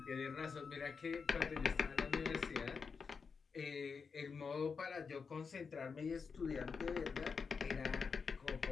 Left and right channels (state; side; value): quieter; right; 5.5 dB